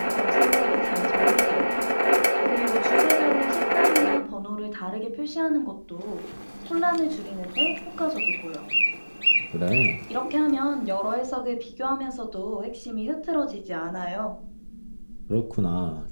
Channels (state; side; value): inverted; both; correlation -1.00